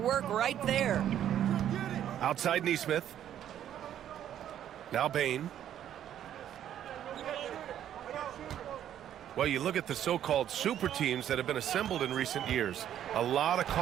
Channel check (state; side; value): quieter; left; 10.7 dB